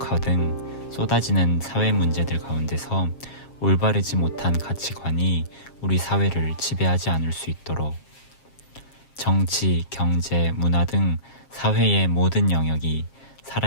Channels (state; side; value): late; right; 7.4 ms